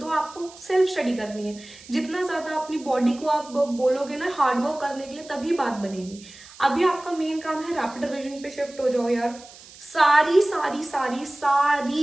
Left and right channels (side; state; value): right; noise; hiss, 20 dB below the sound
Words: आपको सेल्फ स्टडी करनी है। जितना ज्यादा अपनी बॉडी को आप बोलोगे ना हार्डवर्क करने के लिए, तभी बात बनेगी। अभी आपका मेन काम है रैपिड रिवीजन पे शिफ्ट हो जाओ यार। सारी सारी सारी